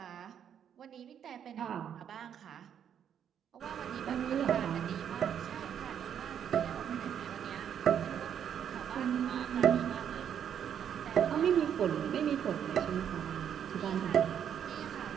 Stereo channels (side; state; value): left; quieter; 8.9 dB